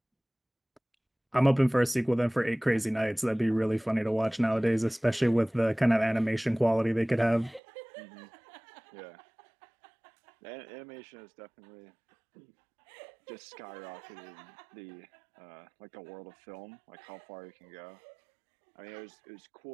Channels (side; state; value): left; drops out; at 7.6 s